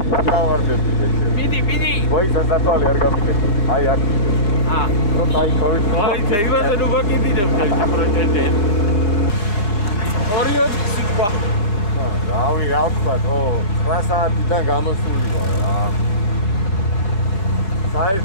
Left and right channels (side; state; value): right; late; 5.0 ms